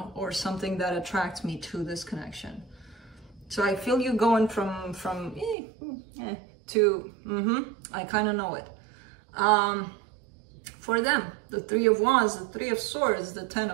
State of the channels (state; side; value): drops out; left; at 5.6 s